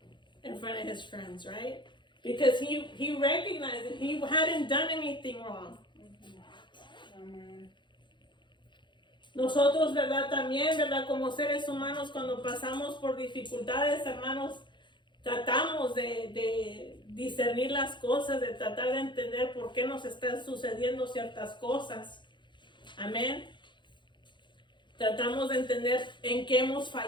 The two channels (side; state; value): right; late; 0.23 ms